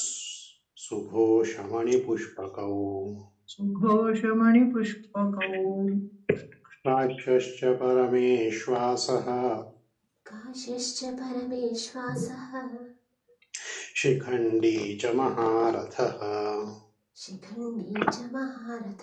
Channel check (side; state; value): both; identical; correlation 1.00